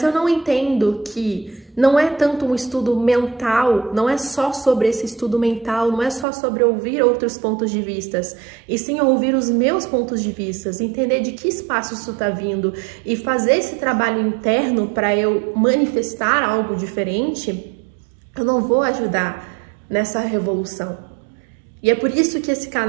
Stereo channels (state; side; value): drops out; left; at 6.2 s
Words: eu não entendo que não é tanto um estudo mental, não é só sobre esse estudo mental, não é só sobre ouvir outros pontos de vista, e sim ouvir os meus pontos de vista, entender de que espaço isso está vindo e fazer esse trabalho interno para eu manifestar algo diferente, eu não vou ajudar nessa revolução. E é por isso que esse